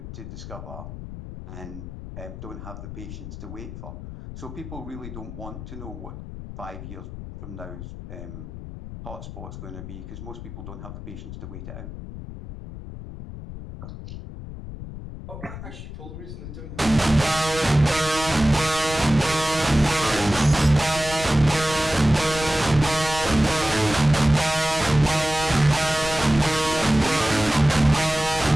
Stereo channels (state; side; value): noise; left; rumble, 11 dB below the sound